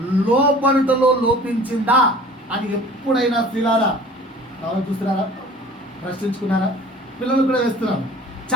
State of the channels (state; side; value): normal; both; correlation 0.45